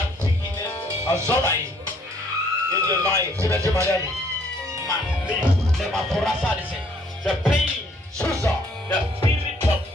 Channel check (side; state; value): both; normal; correlation 0.64